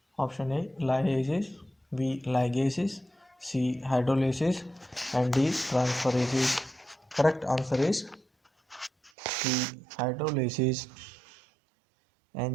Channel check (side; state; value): left; drops out; at 9.1 s